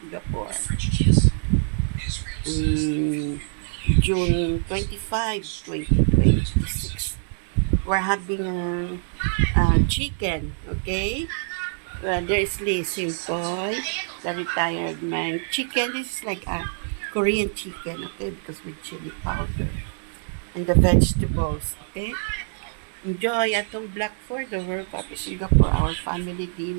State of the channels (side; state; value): left; silent; 62 dB below the other